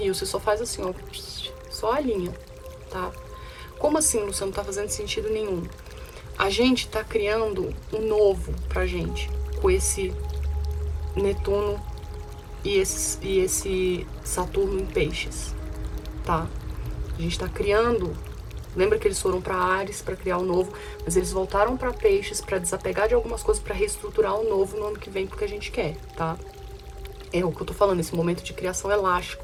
Você só faz assim, ó, só alinha, tá? Como assim, Luciano? Não tá fazendo sentido nenhum. A gente tá criando um novo pra gente, com esse Netuno e esse Saturno em Peixes, tá? A gente tá criando... Lembra que eles foram para Áries para criar o novo, mas eles voltaram para Peixes para desapegar de algumas coisas, para reestruturar o novo no ano que vem, porque a gente quer, tá? É o que eu tô falando, esse momento de criação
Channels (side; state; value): both; identical; correlation 1.00